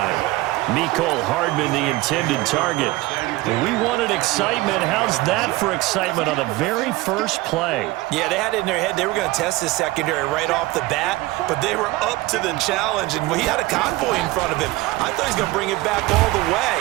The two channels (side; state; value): left; quieter; 19.4 dB